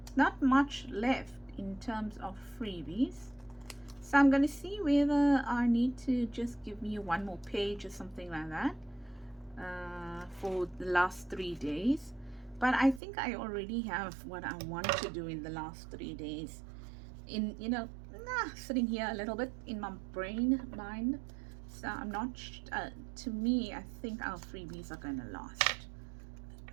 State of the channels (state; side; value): drops out; left; at 13.0 s